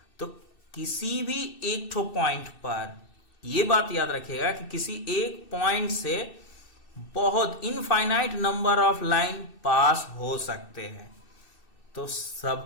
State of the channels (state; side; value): late; right; 2.6 ms